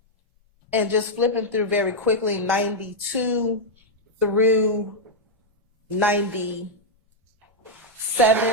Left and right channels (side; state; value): both; normal; correlation -0.03